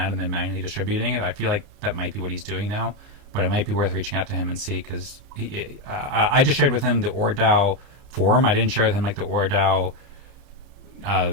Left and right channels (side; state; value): left; late; 30 ms